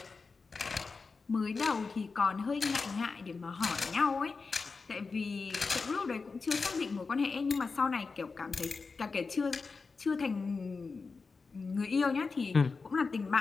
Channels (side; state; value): right; quieter; 4.5 dB